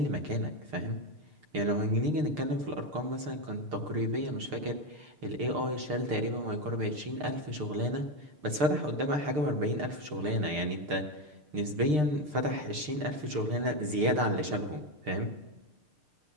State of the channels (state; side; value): late; left; 6.7 ms